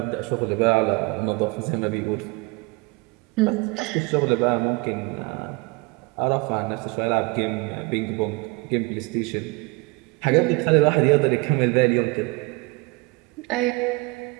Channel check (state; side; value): quieter; left; 26.8 dB